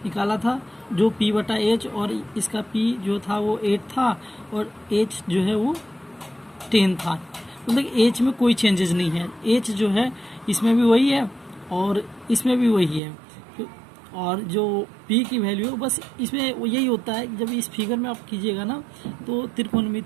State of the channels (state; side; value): drops out; left; at 13.0 s